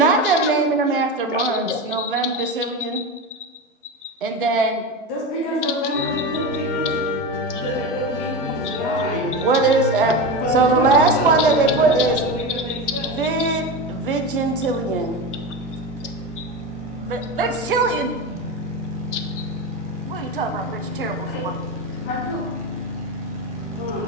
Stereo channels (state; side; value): normal; both; correlation 0.22